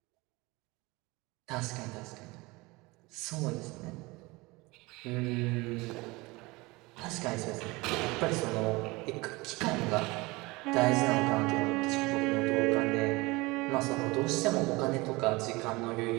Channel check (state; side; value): quieter; left; 23.2 dB